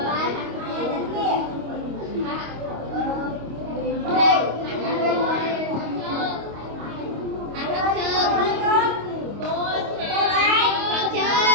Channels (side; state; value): left; late; 25 ms